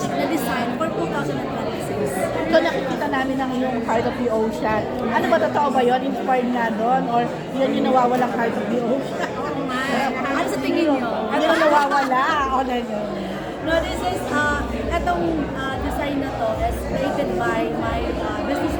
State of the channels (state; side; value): identical; both; correlation 1.00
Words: na design for 2026. So nakikita namin ang iyong Heart of the Ocean. Ano ba, totoo ba yun? Inspired nga doon? Or yun yung nawawalang Heart of the Ocean? Ano sa tingin niyo? Ano yung nawawala? O na yun? No, this is, itong design na to is created by my business